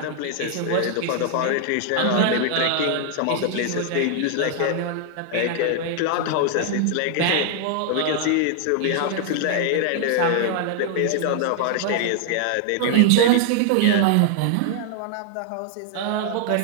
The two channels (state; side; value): different; both; correlation 0.00